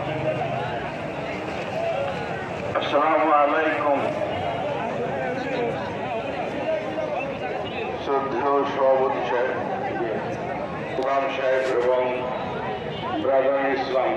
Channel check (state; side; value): identical; both; correlation 1.00